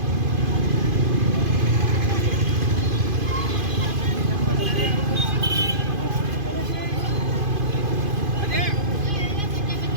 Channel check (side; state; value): left; late; 2.5 ms